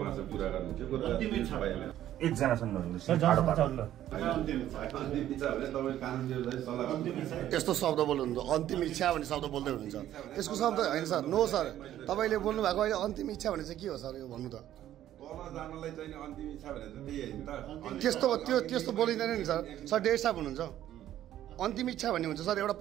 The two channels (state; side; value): quieter; left; 12.3 dB